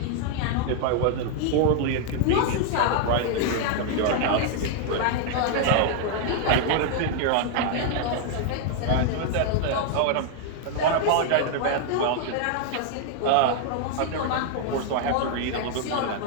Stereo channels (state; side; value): different; both; correlation 0.00